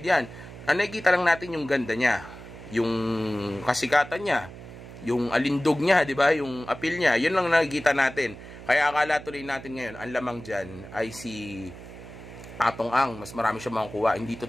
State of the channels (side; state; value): right; noise; hum, 15 dB below the sound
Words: yan. Nakikita lang natin yung ganda niya. Yung kasikatan niya. Yung alindog niya, di ba? Yung appeal niya. Yun lang nakikita natin. Kaya akala tuloy natin ngayon, ang lamang dyan ay si Atong Ang. Mas marami siya makukuha. Hindi